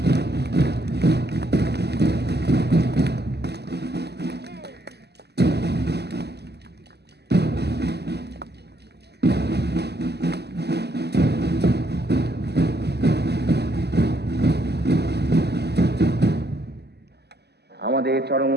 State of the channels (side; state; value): left; late; 0.48 ms